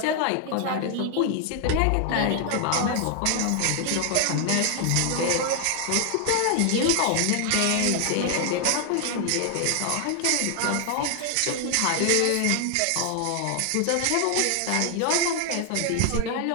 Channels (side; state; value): both; different; correlation 0.00